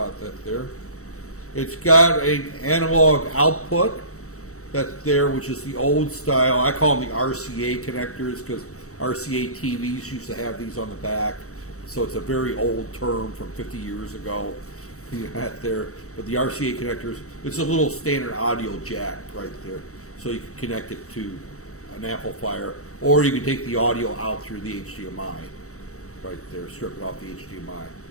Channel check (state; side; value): late; right; 0.65 ms